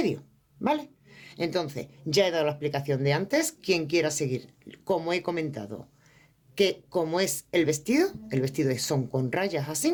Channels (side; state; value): both; identical; correlation 1.00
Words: ¿vale? Entonces, ya he dado la explicación de antes. Quien quiera seguir, como he comentado, que como es el vestido son con rayas